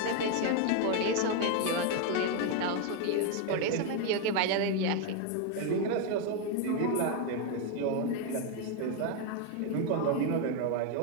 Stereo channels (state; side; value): different; both; correlation 0.01